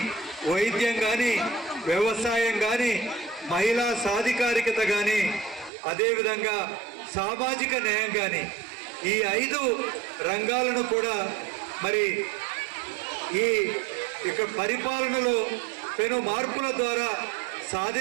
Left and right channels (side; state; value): left; drops out; at 5.7 s